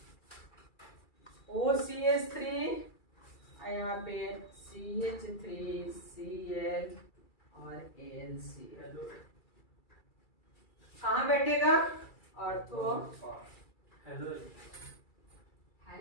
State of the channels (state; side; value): late; right; 2.3 ms